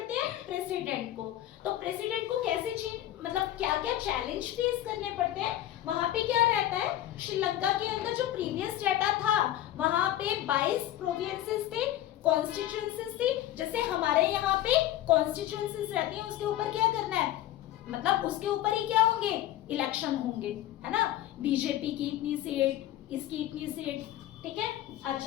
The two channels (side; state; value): right; quieter; 13.2 dB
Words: हैं, प्रेसिडेंट को। तो प्रेसिडेंट को कैसे मतलब क्या क्या चैलेंज फेस करने पड़ते हैं, वहां पे क्या रहता है, श्रीलंका के अंदर जो प्रीवियस डेटा था वहां पे 22 प्रोविंसेस थे, कॉन्स्टिट्यूएंसीज थी। जैसे हमारे यहाँ पे कॉन्स्टिट्यूएंसीज रहती है, उसके ऊपर क्या करना है, मतलब उसके ऊपर ही क्या होंगे, इलेक्शन होंगे, है ना। बीजेपी की इतनी सीट, इसकी इतनी सीट, ठीक है।